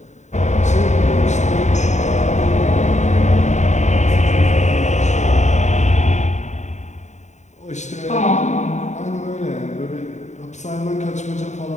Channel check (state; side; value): late; right; 0.34 ms